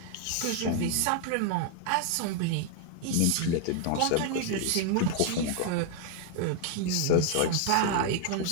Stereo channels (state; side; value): different; both; correlation 0.00